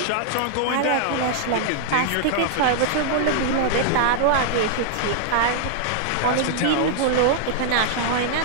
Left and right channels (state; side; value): different; both; correlation -0.01